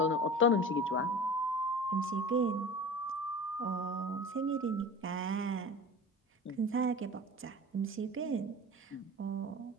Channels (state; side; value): normal; both; correlation 0.35